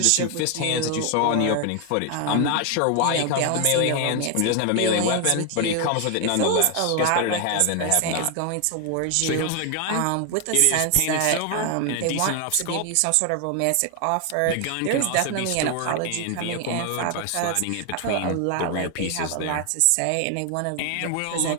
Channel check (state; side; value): different; both; correlation 0.01